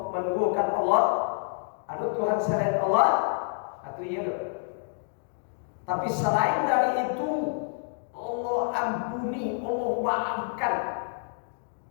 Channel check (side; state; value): right; silent; digital silence